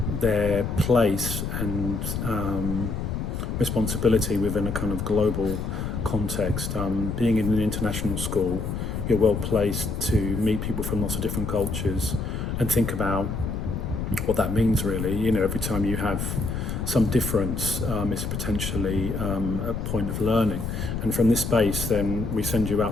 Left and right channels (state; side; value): noise; left; rumble, 3 dB below the sound